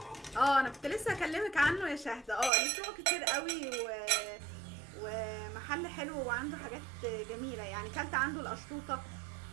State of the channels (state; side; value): drops out; left; at 2.5 s